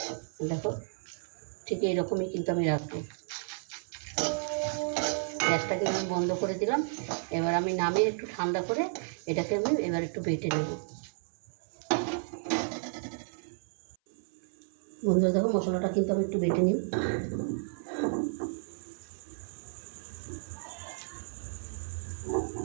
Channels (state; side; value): silent; left; 56 dB below the other